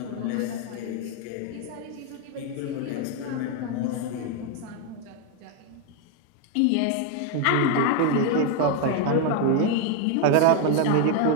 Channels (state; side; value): different; both; correlation 0.01